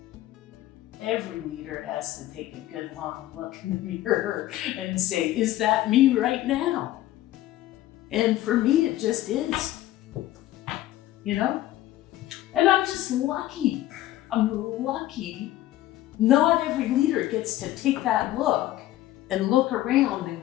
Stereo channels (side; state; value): right; quieter; 14.7 dB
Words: Every leader has to take a good long look in the mirror and say, is that me right now? And for me, it just is. You know? And I'm just lucky. I'm lucky. Not every leader gets to take that look and look around and